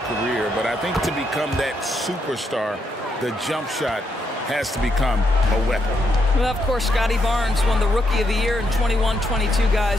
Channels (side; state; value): both; normal; correlation 0.78